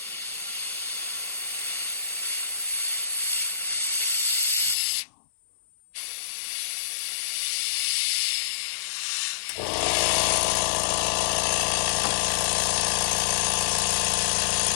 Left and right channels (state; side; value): drops out; right; at 4.8 s